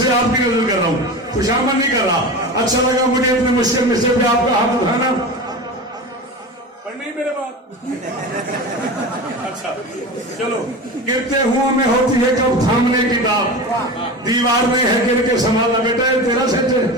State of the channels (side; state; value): both; normal; correlation 0.29